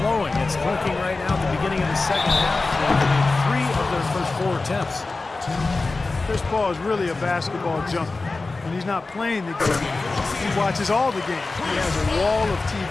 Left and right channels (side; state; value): right; quieter; 3.6 dB